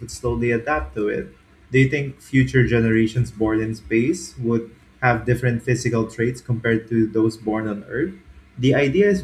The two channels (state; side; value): identical; both; correlation 1.00